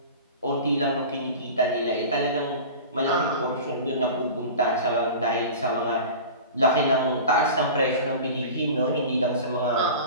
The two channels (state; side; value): inverted; both; correlation -0.35